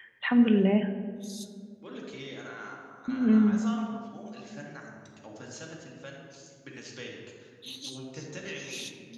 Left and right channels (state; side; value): identical; both; correlation 1.00